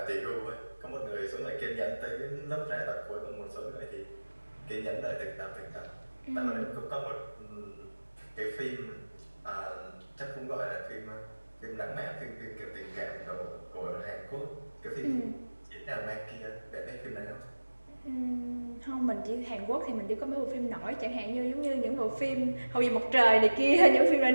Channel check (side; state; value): both; inverted; correlation -1.00